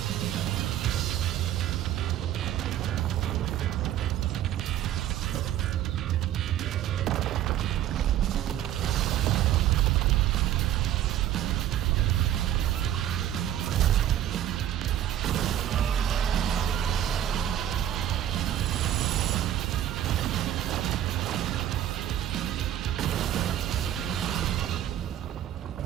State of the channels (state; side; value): quieter; left; 11.6 dB